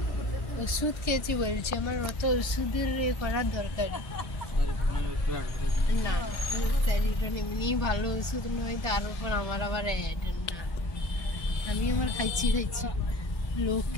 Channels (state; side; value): late; right; 2.3 ms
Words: ওষুধ খেয়েছি বলছি, আমার অত ওষুধের করার দরকার না। স্যারিডন এমনি ভালো ওষুধ নয়, তার উপর আমার আবার অ্যাড না। আমি আমার খাইছি,